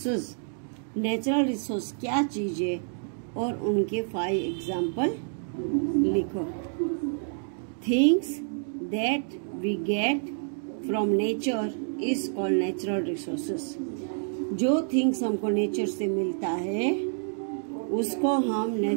Natural resource क्या चीज है और उनके 5 एग्जाम्पल लिखो. Things that we get from nature is called natural resources. जो थिंग्स हमको नेचर से मिलता है उसको हम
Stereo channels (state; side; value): silent; left; digital silence